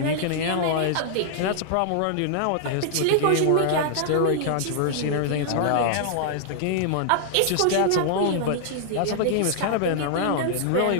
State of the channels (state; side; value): different; both; correlation -0.01